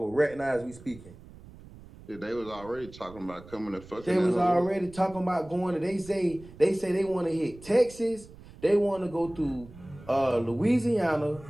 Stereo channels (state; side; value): noise; right; rumble, 19 dB below the sound